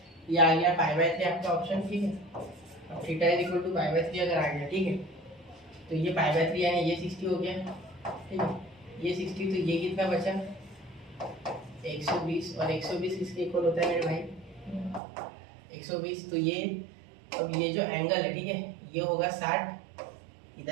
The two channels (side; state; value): left; drops out; at 15.0 s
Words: ये आ गया π/3 आपका ऑप्शन, ठीक है। अब थीटा = π/3 अगर आ गया, ठीक है, तो ये π/3 यानी ये 60 हो गया, ठीक है। ये 60 तो ये कितना बचा 120, और 120 किसके इक्वल होता है मेरे भाई 120। तो ये अब ये जो एंगल है, ठीक है, ये होगा 60